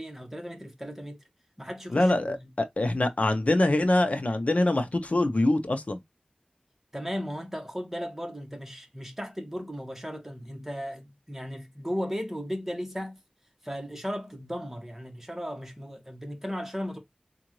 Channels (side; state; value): both; normal; correlation 0.96